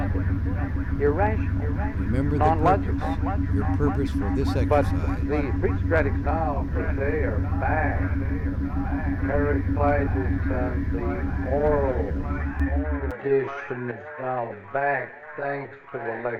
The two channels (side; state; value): both; identical; correlation 1.00